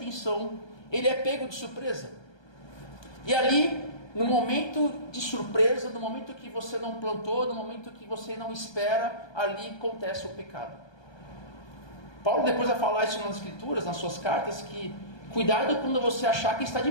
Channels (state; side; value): late; right; 1.2 ms